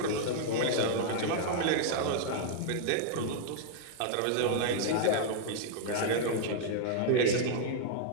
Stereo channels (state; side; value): different; both; correlation -0.01